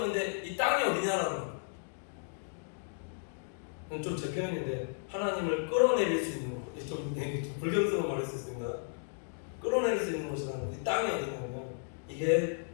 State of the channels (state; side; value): silent; right; digital silence